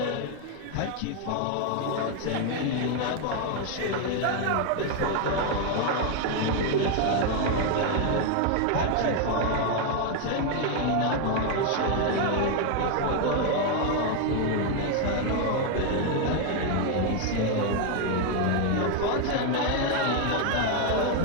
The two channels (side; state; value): both; different; correlation 0.01